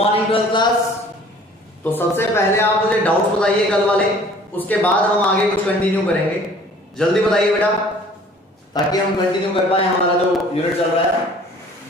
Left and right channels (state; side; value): normal; both; correlation 0.51